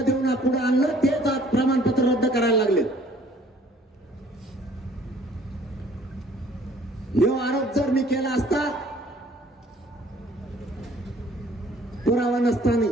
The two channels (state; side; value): normal; both; correlation 0.57